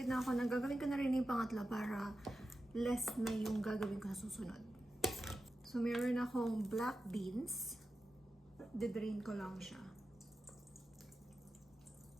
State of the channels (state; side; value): normal; both; correlation 0.92